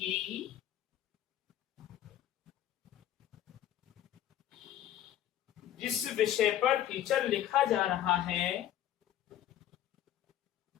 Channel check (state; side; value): quieter; right; 11.7 dB